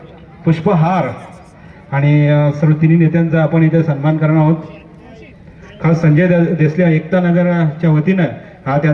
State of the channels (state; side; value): identical; both; correlation 1.00